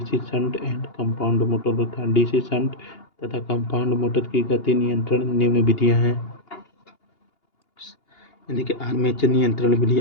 shunt and compound motor होता है। डीसी शंट तथा कंपाउंड मोटर की गति नियंत्रण निम्न विधियां हैं। देखिए आर्मेचर नियंत्रण विधि,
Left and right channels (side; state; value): right; late; 2.8 ms